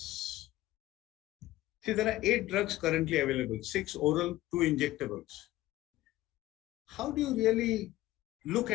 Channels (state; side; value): quieter; right; 16.3 dB